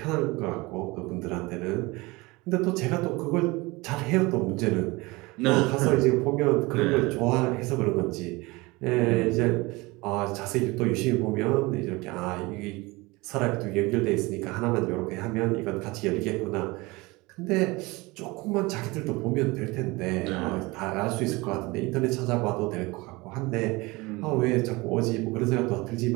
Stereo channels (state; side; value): quieter; left; 23.2 dB